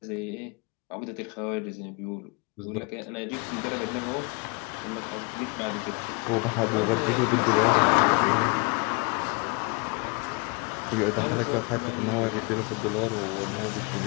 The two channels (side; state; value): right; quieter; 31.3 dB